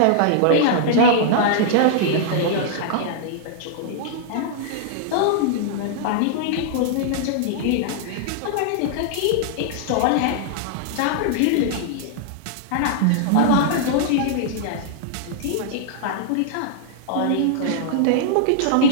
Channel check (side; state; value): both; different; correlation -0.01